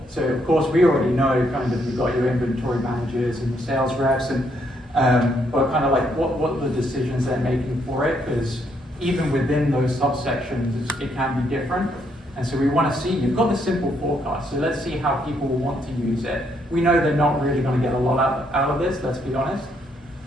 So, of course, we already know kind of you've got your inventory managers and your sales reps, and but kind of like what are the decisions they're making for it, because even within those subsections, it can be different. And so we want to see, you've got the simple forecast, so let's see how people want to use it. We know they're not really going to get a lot out of this, let's be honest.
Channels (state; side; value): normal; both; correlation 0.73